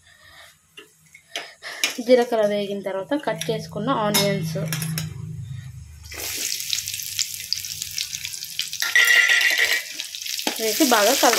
వేగిన తర్వాత కట్ చేసుకున్న ఆనియన్స్ వేసి బాగా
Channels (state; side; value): identical; both; correlation 1.00